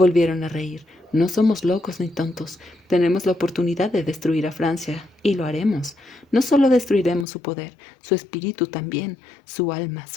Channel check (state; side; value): drops out; right; at 7.2 s